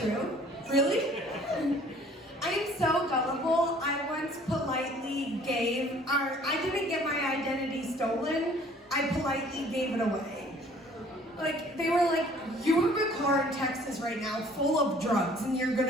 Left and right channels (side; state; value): both; normal; correlation 0.55